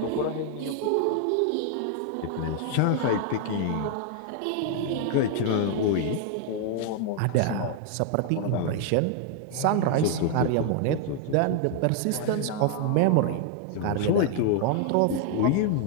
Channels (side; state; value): both; different; correlation 0.00